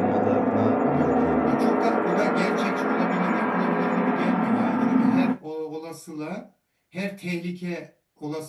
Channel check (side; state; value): both; identical; correlation 1.00